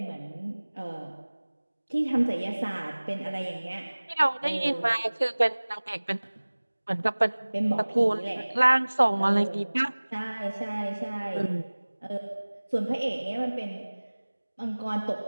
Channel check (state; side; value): inverted; both; correlation -1.00